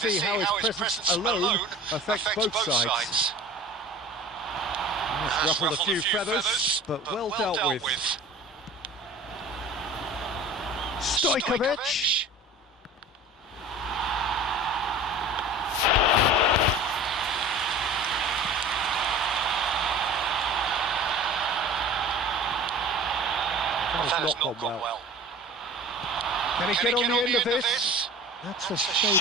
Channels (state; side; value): normal; both; correlation 0.41